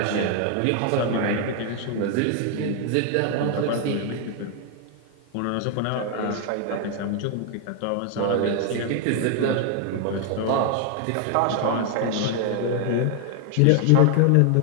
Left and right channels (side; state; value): both; different; correlation 0.00